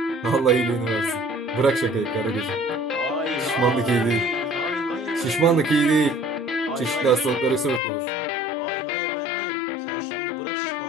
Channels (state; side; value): drops out; right; at 7.8 s